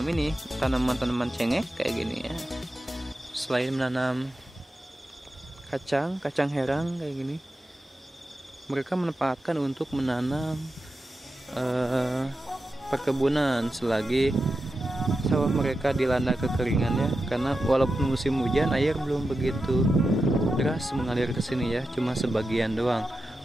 ini tanaman-tanaman cengek kayak gini ya. Selain menanam kacang herang kayak gini, mereka menempatkan untuk menanam perkebunan selagi sawah mereka dilanda kekeringan ya. Karena walaupun musim hujan, air belum begitu deras mengalir ke sini ya, cuma sebagian doang.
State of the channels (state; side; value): normal; both; correlation 0.90